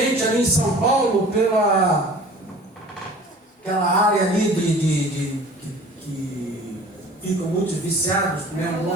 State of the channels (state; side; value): normal; both; correlation 0.45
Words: ali em São Paulo pela aquela área ali que ficam muito viciados, primeiro